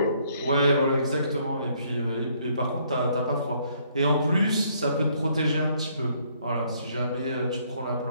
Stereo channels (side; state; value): both; inverted; correlation -0.67